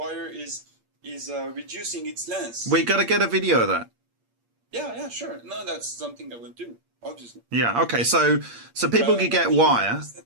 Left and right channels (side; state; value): left; late; 8.6 ms